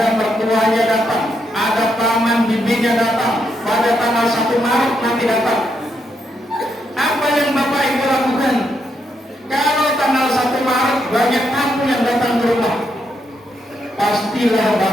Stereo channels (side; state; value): both; normal; correlation 0.79